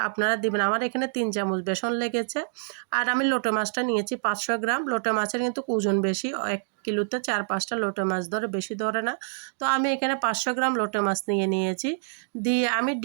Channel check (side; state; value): left; silent; digital silence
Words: আপনারা দিবেন। আমার এখানে 3 চামচ বেসন লেগেছে। আর আমি লোটে মাছটা নিয়েছি 500 গ্রাম। লোটে মাছের কিন্তু ওজন বেশি, 1 কিলোতে 4-5টা লোটে মাছ ধরে, বেশি ধরে না। তো আমি এখানে 500 গ্রাম লোটে মাছ নিয়েছি। দিয়ে আমি